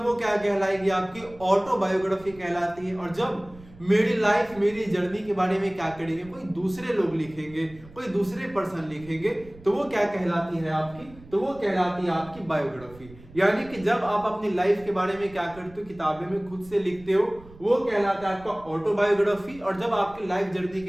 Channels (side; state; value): right; noise; rumble, 21 dB below the sound